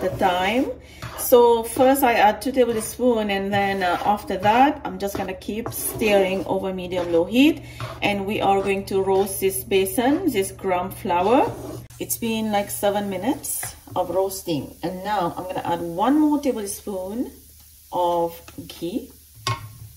a time. So first I add 2 tablespoons, and then after that I'm just gonna keep stirring over medium low heat, and we are going to roast this besan, this gram flour. It's been like 7 minutes of roasting, and now I'm gonna add 1 more tablespoon of ghee.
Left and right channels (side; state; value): both; identical; correlation 1.00